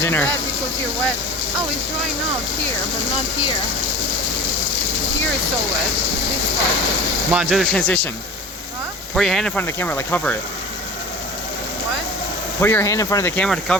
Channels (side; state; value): both; normal; correlation 0.38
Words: dinner. Bad because you're wet. Oh, it's drying out here, but not here. Here it's so wet. This part. Come on, do the transition. Huh? Put your hand in front of the camera, like cover it. What? Put your hand in front of the camera to